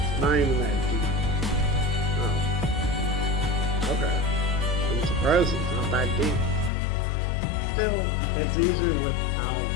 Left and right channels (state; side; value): drops out; right; at 6.7 s